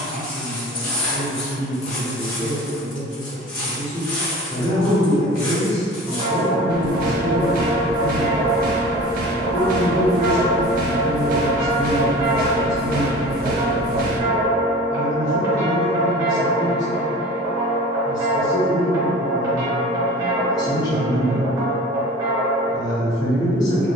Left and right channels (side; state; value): both; normal; correlation 0.39